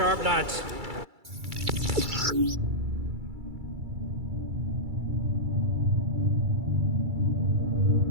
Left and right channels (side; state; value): left; late; 2.3 ms